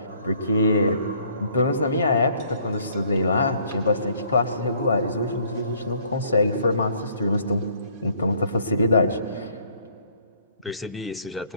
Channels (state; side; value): inverted; both; correlation -0.62